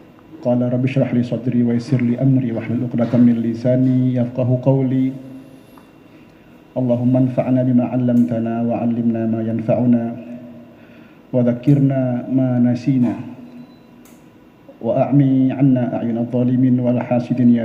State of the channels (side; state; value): both; identical; correlation 1.00